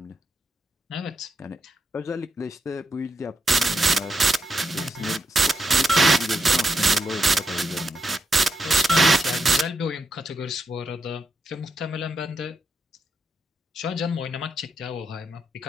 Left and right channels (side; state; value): both; normal; correlation 0.82